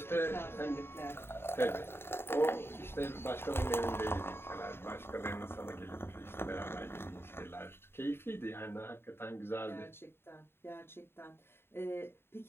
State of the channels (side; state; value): right; late; 0.11 ms